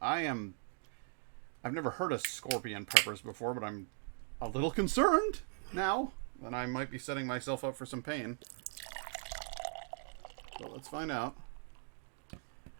I've never heard of scorpion peppers before, but I'm a little concerned now. Then I might be setting myself up for some pain. So let's find out.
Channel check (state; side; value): silent; left; 52 dB below the other